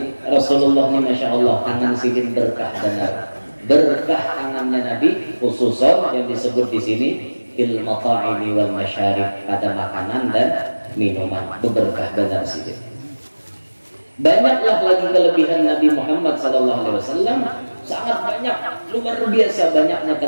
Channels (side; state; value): both; inverted; correlation -1.00